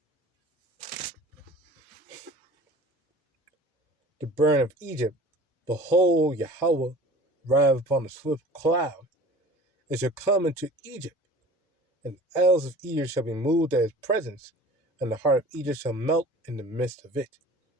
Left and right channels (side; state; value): both; normal; correlation 0.43